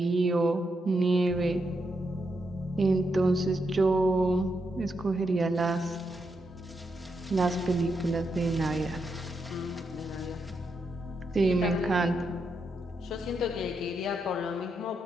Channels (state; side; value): normal; both; correlation 0.83